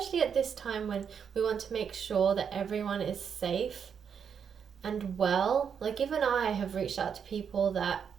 at this time when we want to make sure that everyone is safe and well. Like, even I have reached out to people that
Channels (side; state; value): left; quieter; 7.2 dB